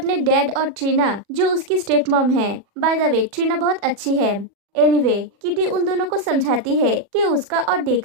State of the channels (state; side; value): late; left; 40 ms